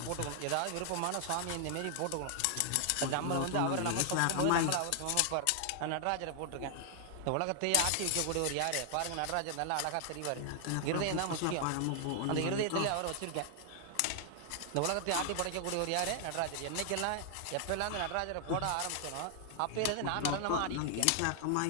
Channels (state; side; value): different; both; correlation 0.00